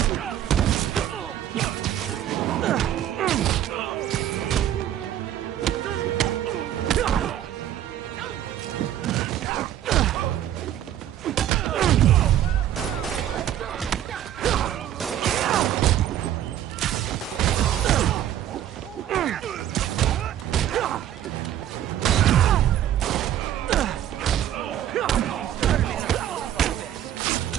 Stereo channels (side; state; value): left; quieter; 11.4 dB